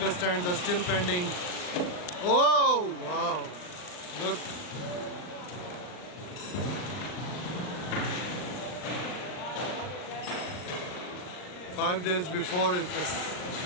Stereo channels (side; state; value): right; late; 39 ms